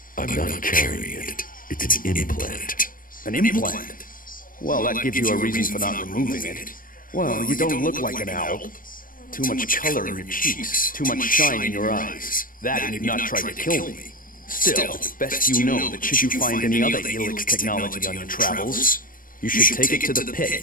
I'm not carrying it. It's an implant. An implant? Well, that gives you a reason for not removing it. Well, you don't look like an owl. Too much color in your cheeks, too much shine in your eyes. That and you've not tried to kill me. Still, best you know that should you find any other Elix technology on your travels, you should take it to the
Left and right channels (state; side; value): late; right; 0.40 ms